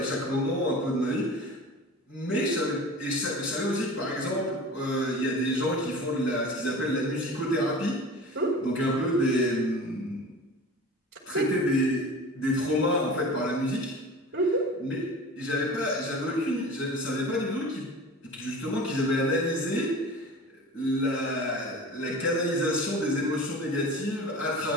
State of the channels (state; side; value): normal; both; correlation 0.37